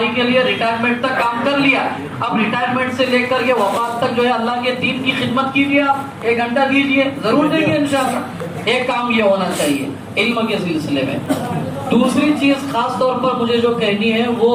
کے لیے ریٹائرمنٹ تک کام کر لیا، اب ریٹائرمنٹ سے لے کر کے وفات تک جو ہے اللہ کے دین کی خدمت کیجیے، آپ 1 گھنٹہ دیجیے، ضرور دیں گے انشاءاللہ۔ ایک کام یہ ہونا چاہیے علم کے سلسلے میں۔ دوسری چیز خاص طور پر مجھے جو کہنی ہے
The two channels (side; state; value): both; identical; correlation 1.00